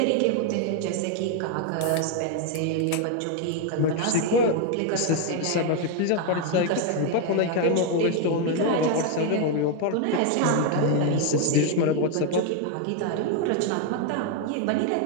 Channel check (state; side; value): different; both; correlation 0.01